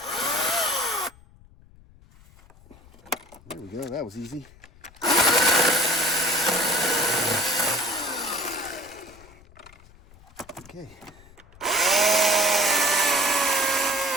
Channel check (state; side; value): noise; left; rumble, 25 dB below the sound